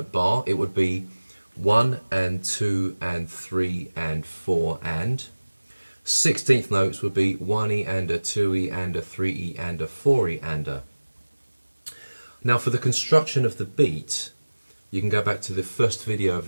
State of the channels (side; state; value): both; inverted; correlation -1.00